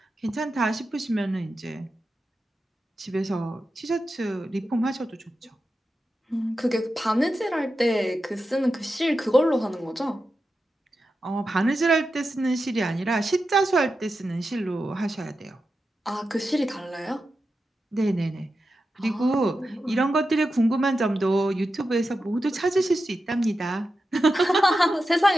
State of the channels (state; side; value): normal; both; correlation 0.90